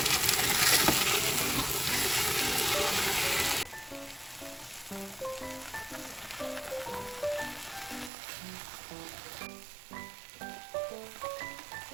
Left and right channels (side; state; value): left; drops out; at 8.1 s